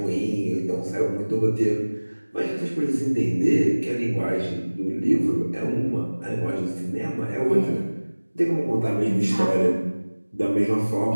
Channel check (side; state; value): both; inverted; correlation -1.00